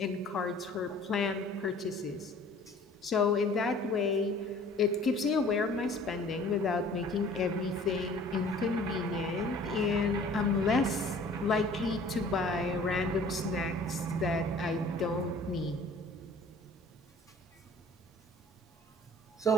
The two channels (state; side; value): normal; both; correlation 0.50